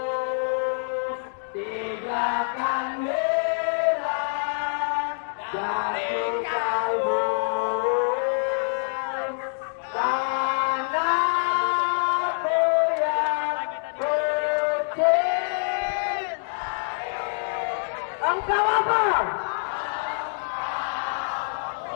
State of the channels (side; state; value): right; silent; digital silence